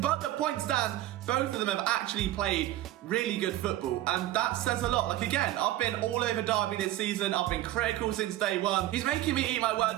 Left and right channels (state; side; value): quieter; left; 14.7 dB